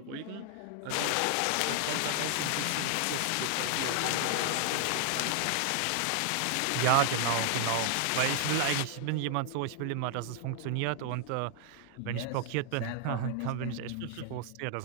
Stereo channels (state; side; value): different; both; correlation 0.00